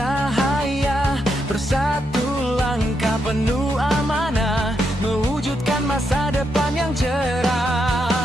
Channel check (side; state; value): both; normal; correlation 0.81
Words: Bersatu langkah penuh amanah, mewujudkan masa depan yang